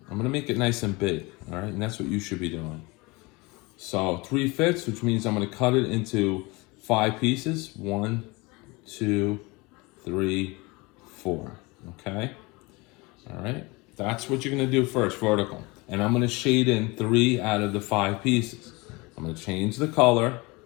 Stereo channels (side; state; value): right; quieter; 25.0 dB